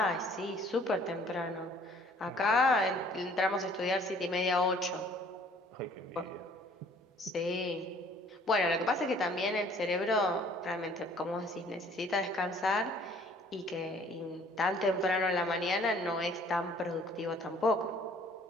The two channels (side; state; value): both; normal; correlation 0.56